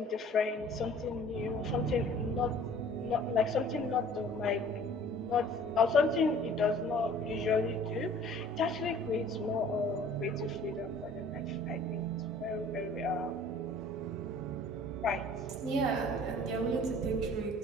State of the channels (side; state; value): both; normal; correlation 0.50